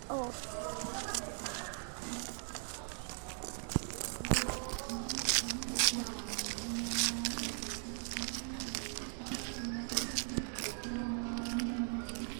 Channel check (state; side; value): silent; left; 52 dB below the other